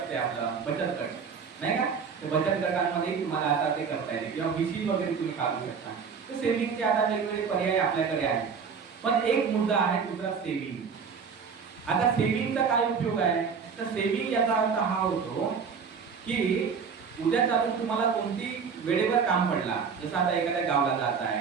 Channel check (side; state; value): left; quieter; 6.0 dB